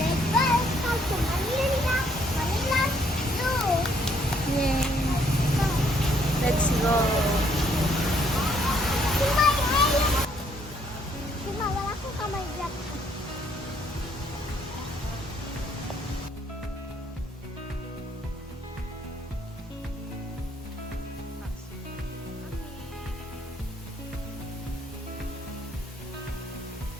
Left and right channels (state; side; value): normal; both; correlation 0.67